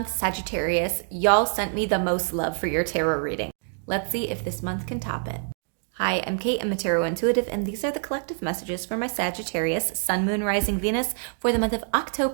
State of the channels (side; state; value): left; silent; 61 dB below the other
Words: Sagittarius, y'all sent me the most love for your tarot reading. Let's see if this month can top it. Hi, I'm Kate. I'm a tarot intuitive, and these are the collective messages for my Sagittarius, Sun, Moon, Rising, Venus for the month of